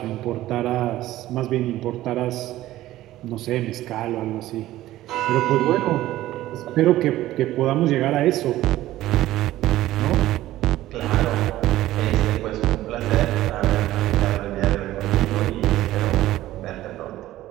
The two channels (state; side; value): quieter; left; 15.2 dB